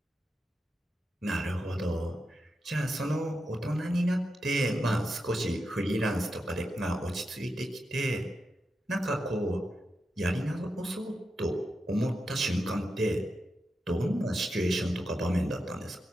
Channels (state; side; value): normal; both; correlation 0.87